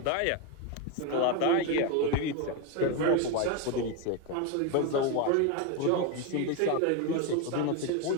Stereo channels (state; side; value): different; both; correlation 0.02